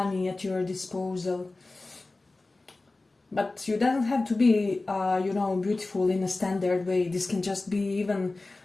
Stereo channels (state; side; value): quieter; right; 3.2 dB